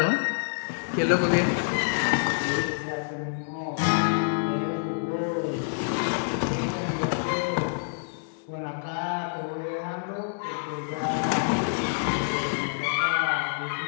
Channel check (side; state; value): right; silent; digital silence